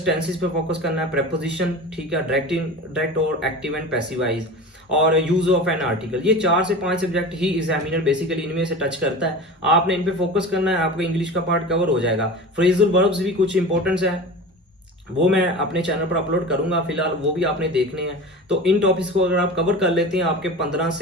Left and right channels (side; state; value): both; normal; correlation 0.32